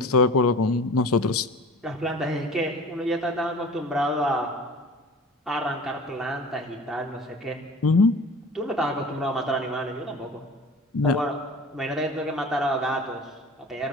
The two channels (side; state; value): both; normal; correlation 0.40